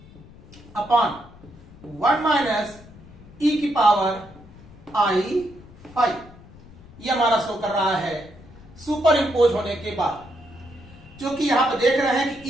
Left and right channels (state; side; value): noise; left; rumble, 21 dB below the sound